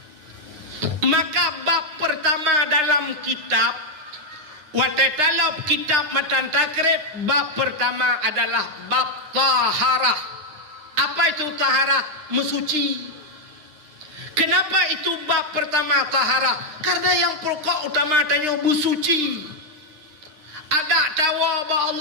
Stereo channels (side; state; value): left; late; 9.5 ms